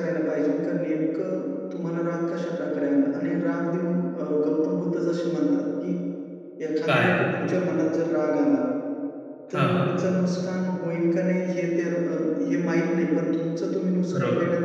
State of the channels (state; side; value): identical; both; correlation 1.00